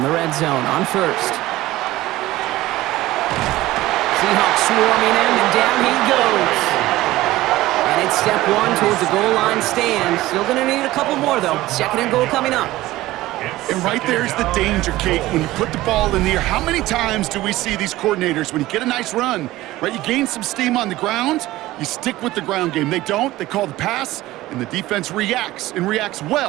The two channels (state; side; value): quieter; left; 17.0 dB